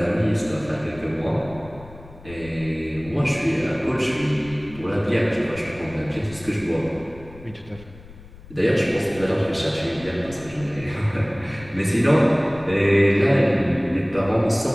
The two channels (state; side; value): noise; left; rumble, 19 dB below the sound